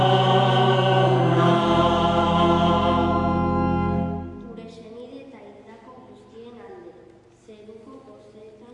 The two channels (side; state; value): both; identical; correlation 1.00